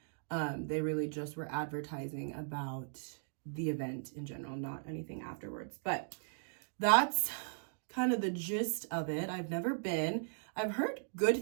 They really just were advertising about the event in general, not anything afterwards. But that's kind of the gist of it. I've never been. I've heard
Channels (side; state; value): left; silent; digital silence